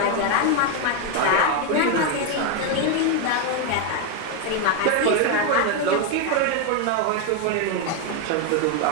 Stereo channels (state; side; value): different; both; correlation 0.01